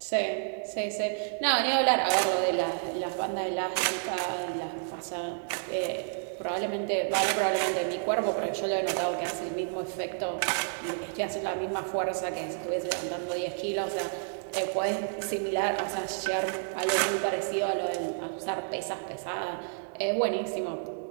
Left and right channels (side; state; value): left; silent; digital silence